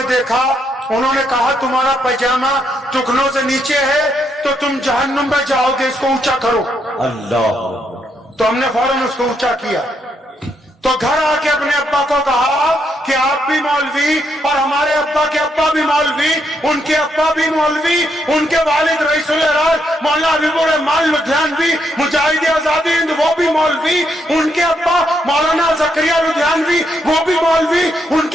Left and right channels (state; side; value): normal; both; correlation 0.77